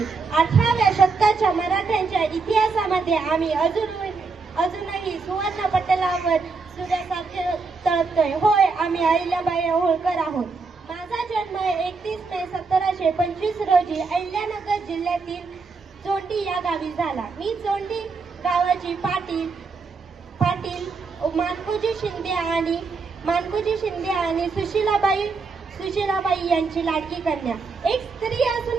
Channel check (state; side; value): quieter; left; 4.4 dB